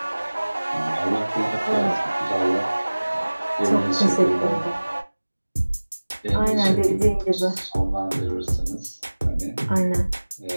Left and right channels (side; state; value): both; inverted; correlation -1.00